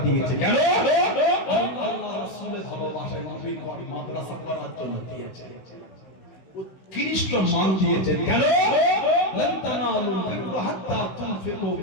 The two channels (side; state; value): right; late; 16 ms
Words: দিয়েছে। কেন? আল্লাহ রাসূলের ভালোবাসায় নবীর ঘর মাদ্রাসা করার জন্য দিয়েছে, উৎকৃষ্ট মান দিয়েছেন। কেন? লান তানালুল বিররা হাত্তা তুনফিকু